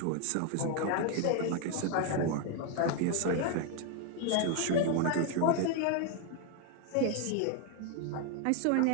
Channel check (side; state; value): both; different; correlation 0.01